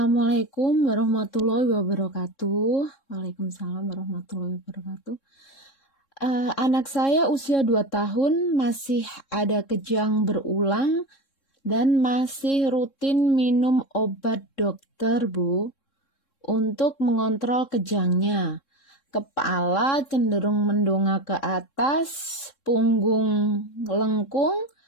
warahmatullahi wabarakatuh. Waalaikumsalam warahmatullahi wabarakatuh. Anak saya usia 2 tahun, masih ada kejang berulang dan masih rutin minum obat dokter, Bu, untuk mengontrol kejangnya. Kepala cenderung mendongak ke atas, punggung lengkung,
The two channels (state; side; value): late; right; 3.7 ms